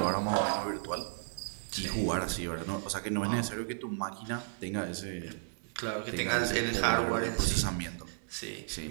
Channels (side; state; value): left; silent; 55 dB below the other